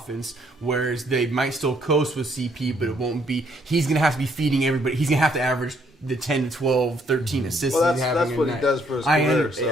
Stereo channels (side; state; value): both; normal; correlation 0.68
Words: whereas they might still coast with CP, but it won't be. He's going to have to be feeding everybody. He's going to have to average the 10 to 12, 13 assists. Well, he's having that's a what night. he does for his career. So.